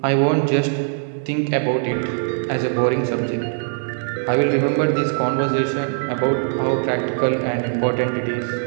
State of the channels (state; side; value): silent; left; digital silence